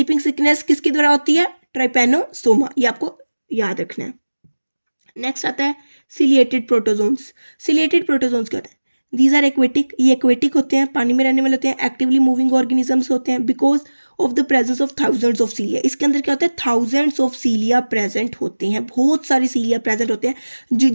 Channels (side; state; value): both; inverted; correlation -1.00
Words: sickness किसके द्वारा होती है? ट्राइपेनोसोमा। ये आपको याद रखना है। नेक्स्ट आता है सिलिएटेड प्रोटोजोन्स। सिलिएटेड प्रोटोजोन्स क्या होते हैं? दीज आर एक्वेटिक, ये एक्वेटिक होते हैं, पानी में रहने वाले होते हैं, एक्टिवली मूविंग ऑर्गेनिजम्स होते हैं because of the presence of thousands of सीलिया। इसके अंदर क्या होता है? थाउजेंड्स ऑफ सीलिया प्रेजेंट होते हैं, बहुत सारे सीलिया प्रेजेंट होते हैं